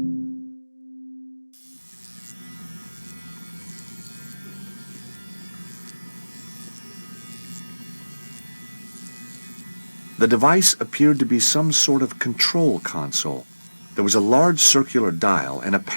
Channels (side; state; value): both; inverted; correlation -0.99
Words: The device appeared to be some sort of control console. There was a large circular dial and a